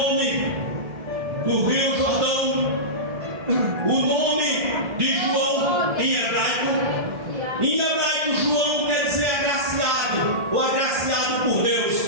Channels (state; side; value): late; left; 1.7 ms